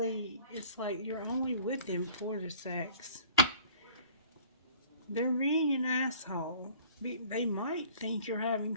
it's like you're only with them for the sex. They're being an asshole. They might think you're having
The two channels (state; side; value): inverted; both; correlation -0.50